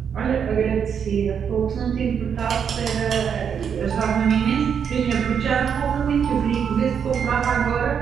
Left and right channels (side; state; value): left; quieter; 7.4 dB